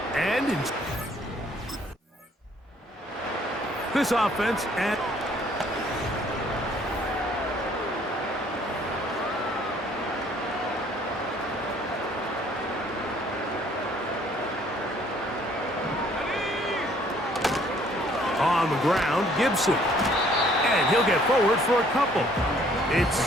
And this offense at on the ground, Gibson. And he'll get forward for a couple. It's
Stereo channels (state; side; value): normal; both; correlation 0.60